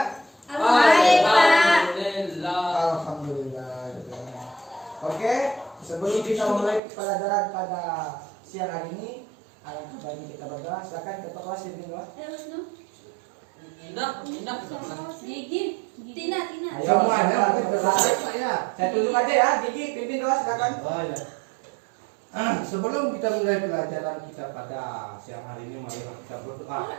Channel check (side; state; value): left; drops out; at 6.8 s